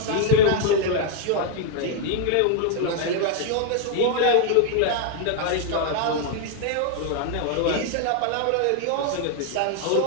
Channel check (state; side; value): different; both; correlation 0.00